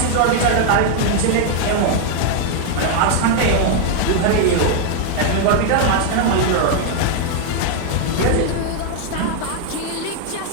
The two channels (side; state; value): both; different; correlation 0.00